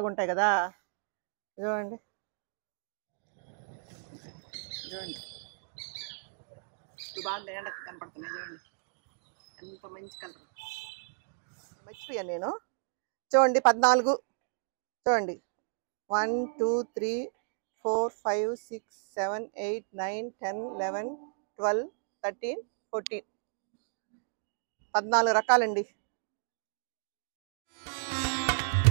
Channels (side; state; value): left; silent; digital silence